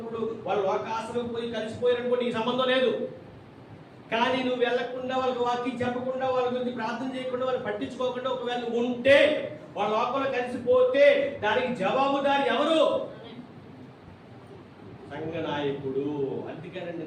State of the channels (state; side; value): identical; both; correlation 1.00